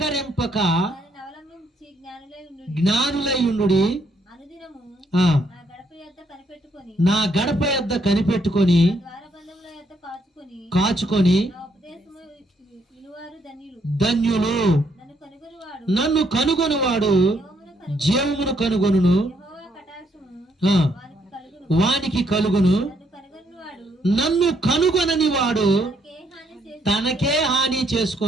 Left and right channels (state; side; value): normal; both; correlation 0.72